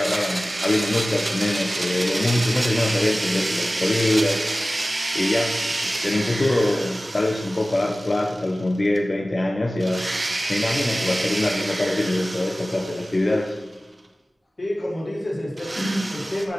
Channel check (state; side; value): normal; both; correlation 0.96